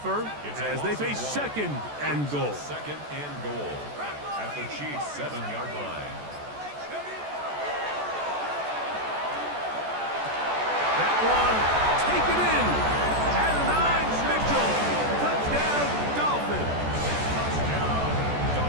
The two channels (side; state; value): left; late; 14 ms